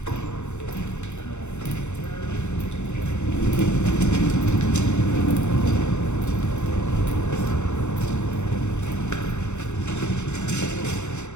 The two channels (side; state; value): right; late; 0.83 ms